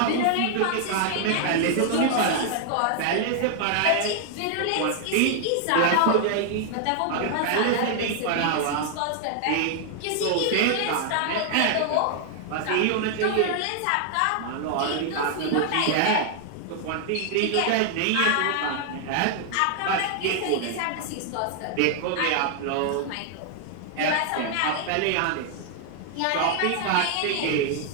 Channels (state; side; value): different; both; correlation 0.00